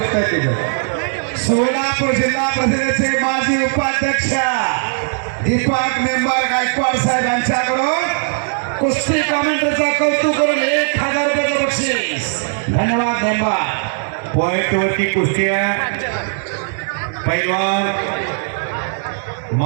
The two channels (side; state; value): left; silent; digital silence